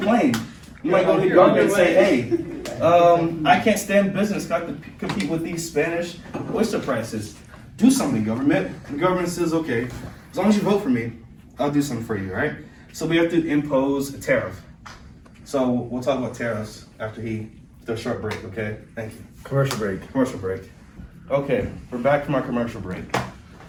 You might go to the government and say, hey, I can't stand business. Got to compete with these Spanish oyster prices. Do something, government. The government says, okay, as long as you vote for me, I'll do something for you, right? So we have to impose a tariff. So we'll talk about tariffs after the short break, okay? Thank you. Commercial break. Commercial break. Okay, we're back from our commercial break.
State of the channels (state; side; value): identical; both; correlation 1.00